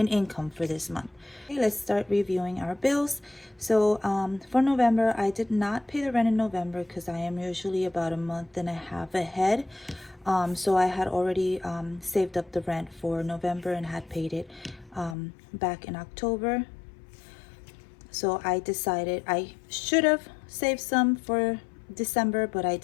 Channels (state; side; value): drops out; right; at 15.2 s